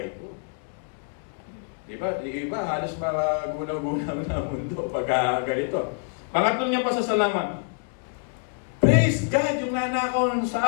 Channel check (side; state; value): right; silent; 61 dB below the other